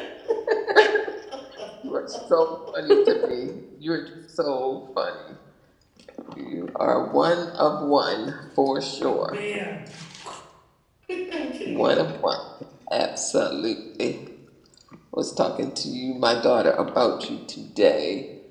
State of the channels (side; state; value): both; identical; correlation 1.00